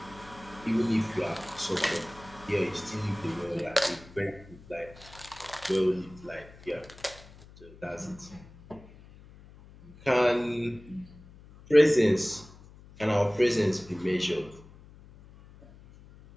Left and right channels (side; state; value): left; noise; hum, 21 dB below the sound